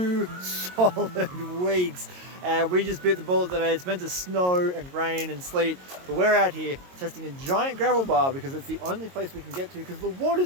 solid weeks. And we just bit the bullet today. It's meant to snow and rain and sleet, but we're out here testing a giant gravel bar because it's the only place we can get to because the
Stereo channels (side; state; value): left; late; 22 ms